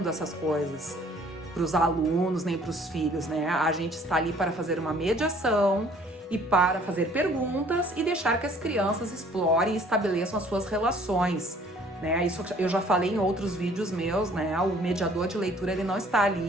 essas coisas para os alunos, nem para os filhos, né? A gente está ali para fazer uma mediação e para fazer perguntas e deixar que as crianças explorem e estabeleçam as suas relações, né? Isso eu já falei em outros vídeos meus, né? O mediador de leitura, ele não está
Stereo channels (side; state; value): both; normal; correlation 0.56